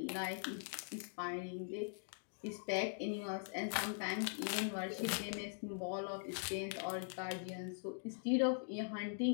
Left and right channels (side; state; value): right; silent; digital silence